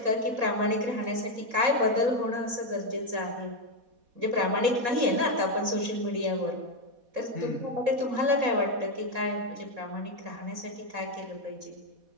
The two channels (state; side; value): late; left; 4.1 ms